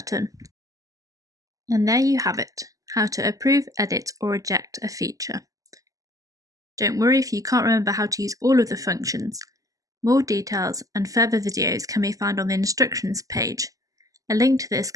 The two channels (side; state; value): left; late; 0.17 ms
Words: And there you have it, how to approve, edit or reject a feature. Don't worry if you can't remember how to use all of the functions. More details and further videos can be found on the instructions page. A link to this